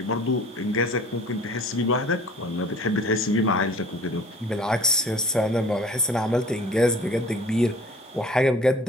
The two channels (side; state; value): both; normal; correlation 0.48